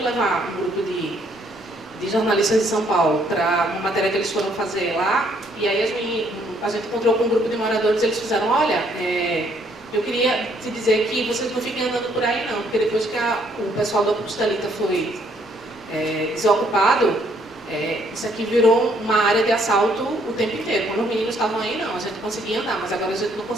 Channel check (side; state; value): left; noise; rumble, 29 dB below the sound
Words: levar um grupo de jornalistas de São Paulo para uma matéria que eles foram fazer lá, e aí a gente encontrou com um grupo de moradores, eles fizeram, olha, eu queria te dizer que vocês não fiquem andando por aí não, porque depois que o pessoal do Estelita foi desocupado, isso aqui virou uma área de assalto o tempo inteiro. Quando os meninos estavam aí, não, a gente conseguia andar, mas agora a gente não